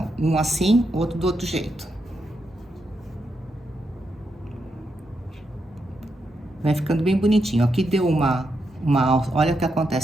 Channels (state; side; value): normal; both; correlation 0.83